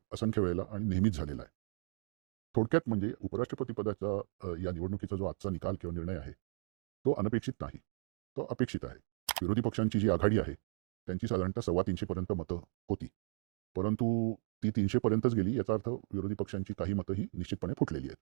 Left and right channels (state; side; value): silent; left; 54 dB below the other